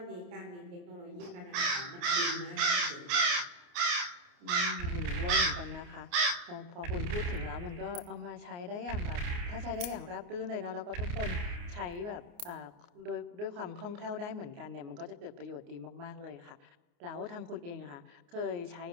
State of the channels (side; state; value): left; late; 29 ms